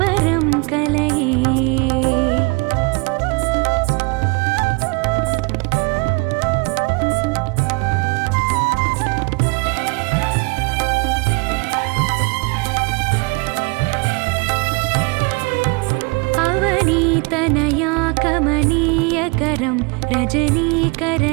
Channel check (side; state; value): left; quieter; 29.6 dB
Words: कलये अवनीतनया कमनीयकरं